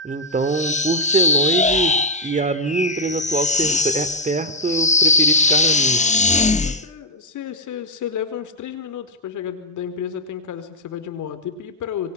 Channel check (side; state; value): both; normal; correlation -0.03